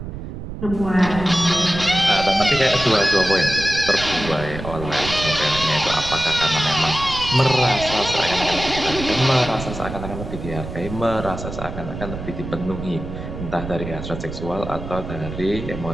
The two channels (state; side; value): noise; right; rumble, 9 dB below the sound